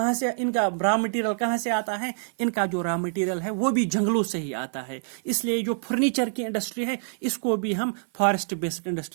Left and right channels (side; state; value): left; silent; 56 dB below the other